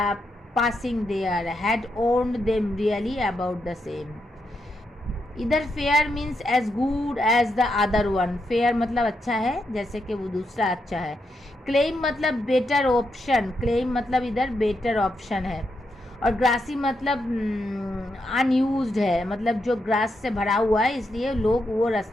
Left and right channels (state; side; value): normal; both; correlation 0.82